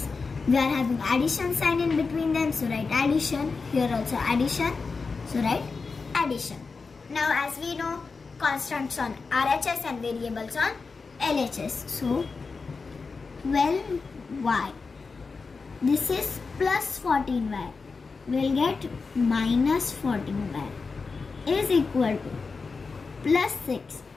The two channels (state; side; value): quieter; right; 4.5 dB